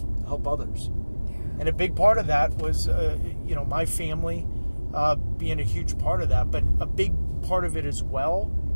help others. And a big part of that was, my family being a huge part of that, but a big part of it as well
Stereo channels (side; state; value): both; inverted; correlation -1.00